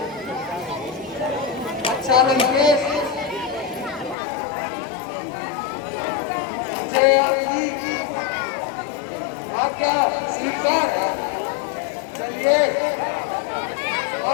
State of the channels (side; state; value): right; drops out; at 4.2 s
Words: अच्छा लंकेश आपका स्वीकार है, चलिए